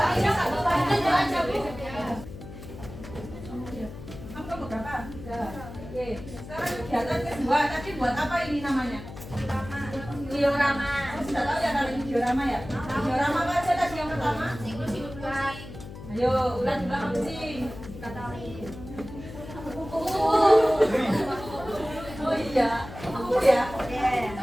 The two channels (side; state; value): left; noise; hum, 13 dB below the sound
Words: Kamu kelompok berapa? 3. Oke. Sekarang kegiatan kedua. Tadi buat apa ini namanya? Diorama. Kamu sudah tahu ya kalau ini diorama ya? Diorama apa aja tadi yang pertama? siklus hidup ular. Ayo, ular juga kucing. Oh iya, kupu ya.